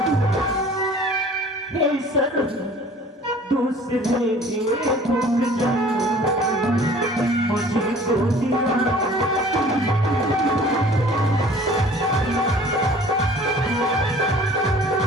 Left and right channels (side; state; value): both; normal; correlation 0.49